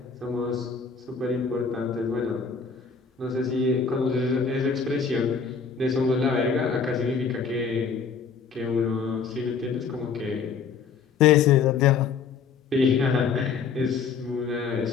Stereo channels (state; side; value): quieter; right; 5.8 dB